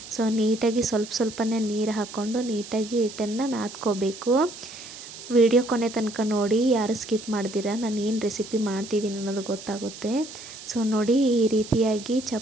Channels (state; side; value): noise; right; hiss, 14 dB below the sound